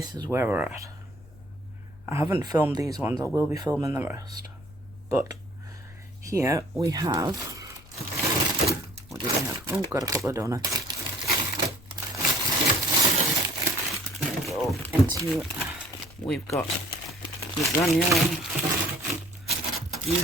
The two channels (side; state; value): left; noise; rumble, 22 dB below the sound